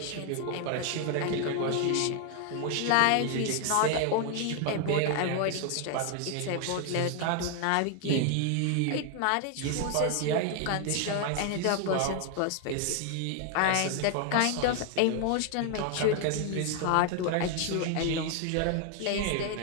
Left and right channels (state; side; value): different; both; correlation 0.00